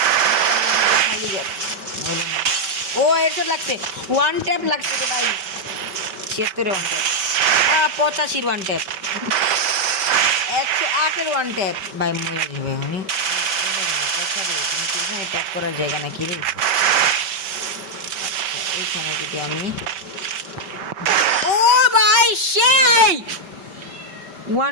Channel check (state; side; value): late; left; 5.2 ms